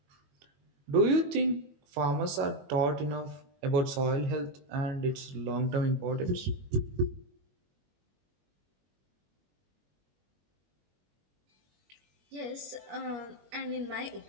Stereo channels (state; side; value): late; left; 21 ms